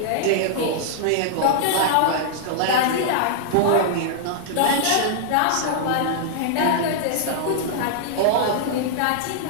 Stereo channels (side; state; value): both; different; correlation -0.01